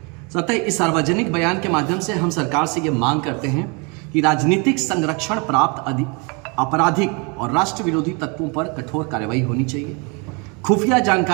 अतः इस सार्वजनिक बयान के माध्यम से हम सरकार से यह मांग करते हैं कि राजनीतिक संरक्षण प्राप्त आपराधिक और राष्ट्र विरोधी तत्वों पर कठोर कार्रवाई होनी चाहिए। खुफिया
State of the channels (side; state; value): left; quieter; 32.0 dB